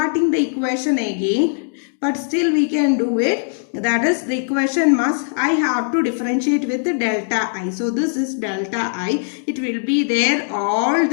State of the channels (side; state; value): right; silent; digital silence